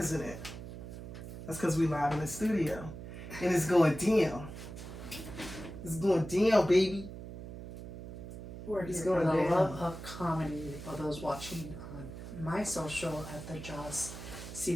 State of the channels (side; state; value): right; noise; hum, 10 dB below the sound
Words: it? That's because we live in the studio. And it's going down. It's going down, baby. It's going the love of comedy for those watching on my social at the Joz